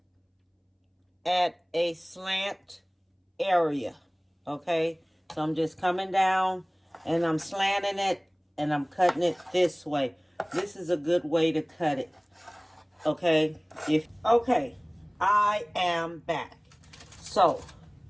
at a slant area. Okay? So I'm just coming down and I'm slanting it and I'm cutting it this way. This is a good way to cut it. Okay? Okay, I am back. So,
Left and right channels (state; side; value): identical; both; correlation 1.00